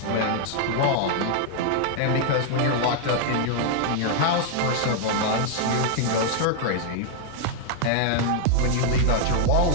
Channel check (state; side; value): different; both; correlation 0.00